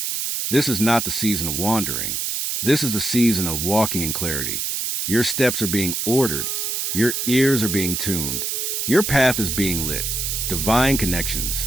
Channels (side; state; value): right; noise; hiss, 1 dB below the sound